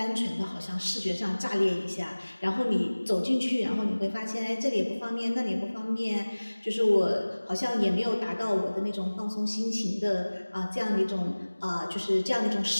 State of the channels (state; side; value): inverted; both; correlation -1.00